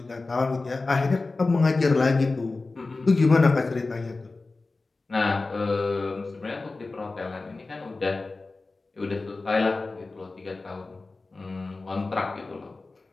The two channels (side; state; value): right; quieter; 3.5 dB